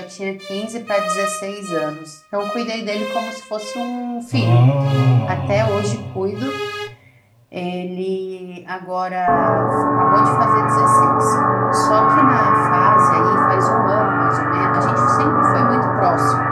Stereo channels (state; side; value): identical; both; correlation 1.00